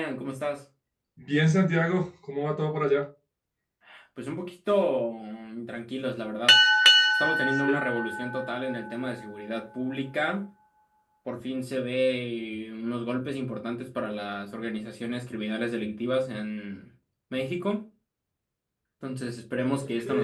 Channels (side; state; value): both; identical; correlation 1.00